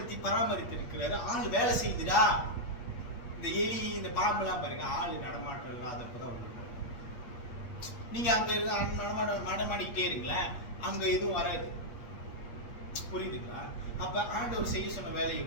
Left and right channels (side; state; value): right; late; 8.5 ms